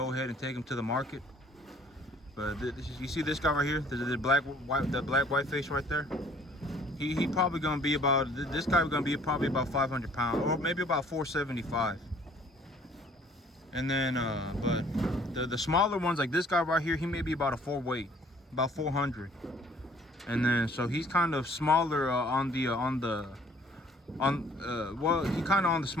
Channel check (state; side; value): normal; both; correlation 0.57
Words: ahead and take them to the market. But you see this guy right here, the black white face right there. He probably gonna be about, this guy gonna be probably about 500 pounds, or maybe about 475. And then but the smaller ones, like this guy right here, he may be about a 4 weight, about 400. And then so he's kind of smaller well, he kind of on the